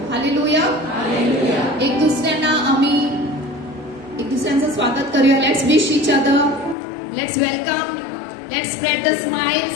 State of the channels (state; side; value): drops out; right; at 6.8 s